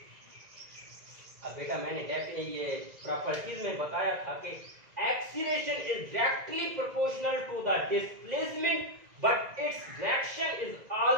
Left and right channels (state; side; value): late; left; 1.9 ms